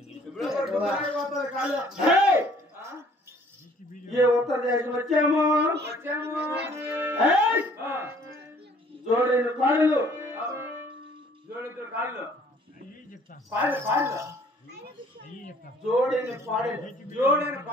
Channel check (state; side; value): normal; both; correlation 0.57